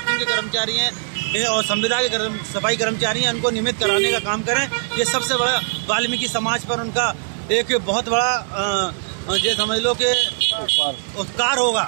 के कर्मचारी हैं और संविदा के सफाई कर्मचारी हैं, उनको नियमित कराने का काम करें। ये सबसे बड़ा वाल्मीकि समाज पर उनका एक बहुत बड़ा ये समझ लो कि उपकार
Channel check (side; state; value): left; silent; 65 dB below the other